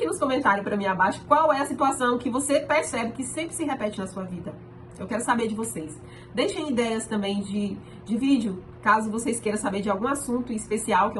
nos comentários para mim abaixo qual é a situação que você percebe que sempre se repete na sua vida. Eu quero saber de vocês. Deixem ideias também de vídeo, caso vocês queiram saber de algum assunto especial que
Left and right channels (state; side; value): identical; both; correlation 1.00